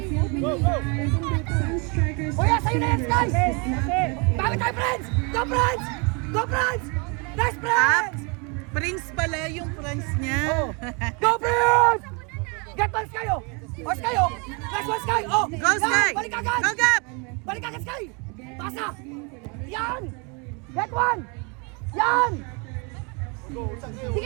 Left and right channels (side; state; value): left; quieter; 32.7 dB